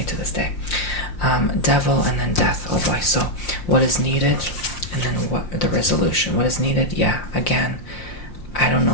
to this day. Devil and then death. Oh boy. So what is needed? And then what the resolution. What is needed? Yeah. Again, I don't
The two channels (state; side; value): late; right; 5.7 ms